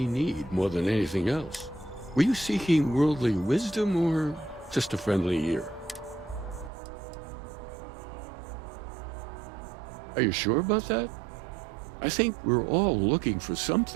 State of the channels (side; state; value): left; drops out; at 6.7 s